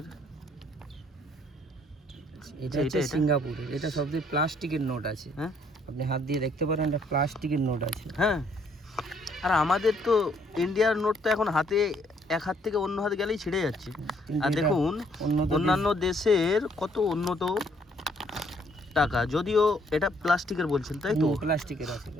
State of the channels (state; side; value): normal; both; correlation 0.66